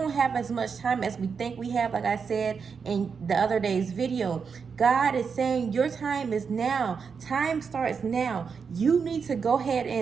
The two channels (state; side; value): quieter; left; 5.9 dB